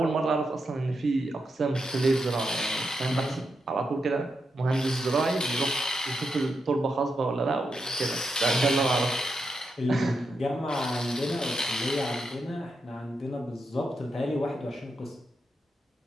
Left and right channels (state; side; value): normal; both; correlation 0.85